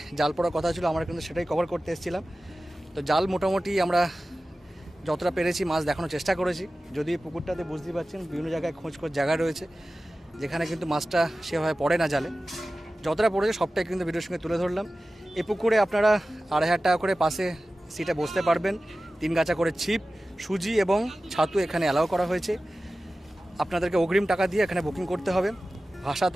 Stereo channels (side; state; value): both; normal; correlation 0.96